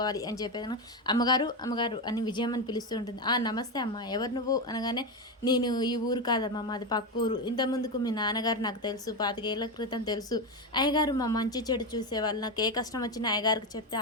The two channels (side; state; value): both; normal; correlation 0.13